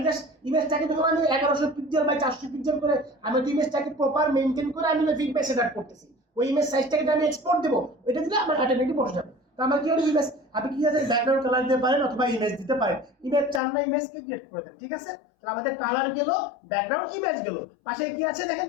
জাস্ট ইমেজটাকে যখন আমি 1100 পিক্সেল বাই 400 পিক্সেল করে আমি ইমেজটাকে প্রপার মেইনটেইন করে আমি ফিডব্যাক সেটআপ করতেছি ওই ইমেজ সাইজটাকে আমি এক্সপোর্ট দেব এটা দিলে আমার অটোমেটিক বসে যাবে তো আমার কি হলো ইমেজ আপনি কি আছে ব্যাকগ্রাউন্ড কালার দিতে পারেন অথবা ইমেজ দিতে পারেন ইমেজ চান না ইমেজকে ক্রিয়েট করে দেন ঠিক আছে তাহলে আমাদের কালার গেল ব্যাকগ্রাউন্ড ইমেজ গেল পাশে কি আছে দেখেন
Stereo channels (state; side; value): drops out; right; at 13.6 s